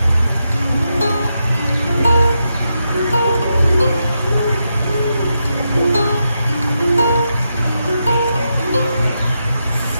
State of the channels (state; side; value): inverted; both; correlation -0.85